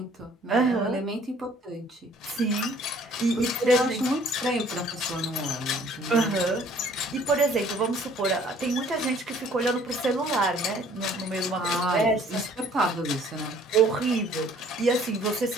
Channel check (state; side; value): normal; both; correlation 0.57